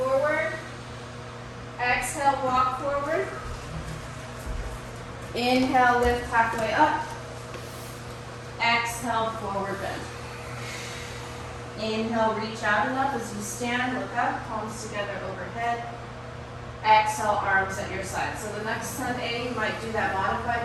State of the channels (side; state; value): both; identical; correlation 1.00